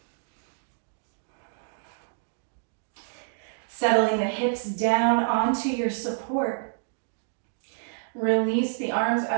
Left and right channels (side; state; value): left; silent; digital silence